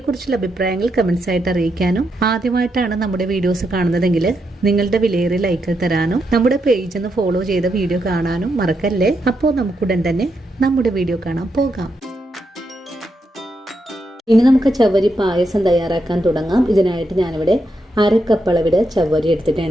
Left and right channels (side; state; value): both; normal; correlation 0.82